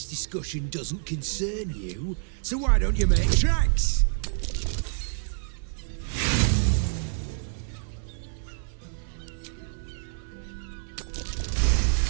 discussion doesn't concern you, so why don't you make tracks?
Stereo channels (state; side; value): silent; left; digital silence